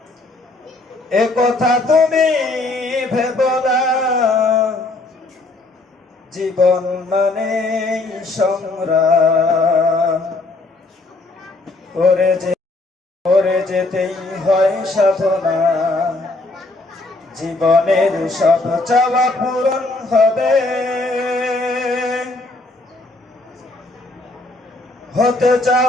এ কথা তুমি ভেবো না। জীবন মানে সংগ্রাম, করে যেতেই হয় সাধনা। জীবনের সব চাওয়া পূরণ হবে, হতে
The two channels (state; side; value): quieter; right; 3.0 dB